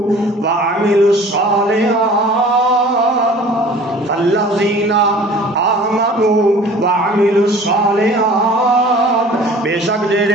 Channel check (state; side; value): normal; both; correlation 0.46